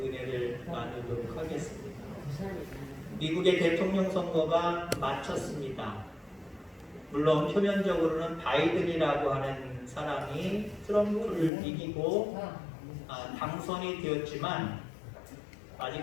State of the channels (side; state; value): right; drops out; at 11.5 s